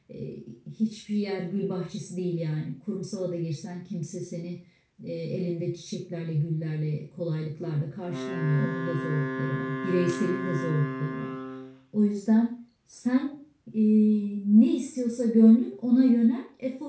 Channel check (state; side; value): identical; both; correlation 1.00